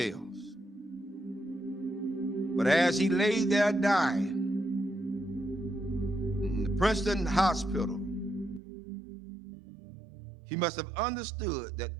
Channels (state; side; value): drops out; left; at 8.6 s